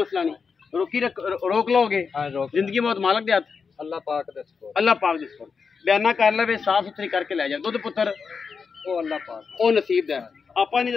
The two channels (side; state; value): right; quieter; 5.5 dB